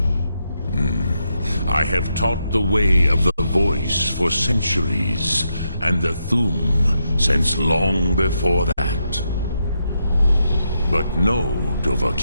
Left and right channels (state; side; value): inverted; both; correlation -0.82